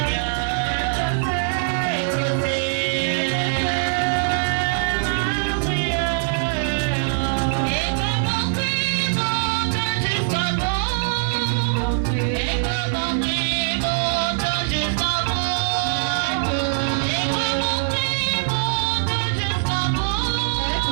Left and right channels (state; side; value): silent; left; digital silence